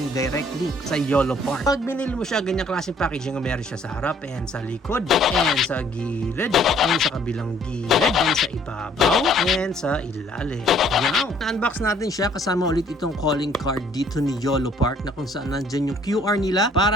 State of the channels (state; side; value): normal; both; correlation 0.61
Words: direct link sa YOLO Park. Pag binili mo siya, ganyang klaseng packaging ang meron siya sa harap and sa likod. And sa gilid, and sa kabilang gilid, and sa ibabaw, and sa ilalim. Now, na-unbox natin siya kasama ulit itong calling card dito ni YOLO Park na kung saan nandyan yung QR nila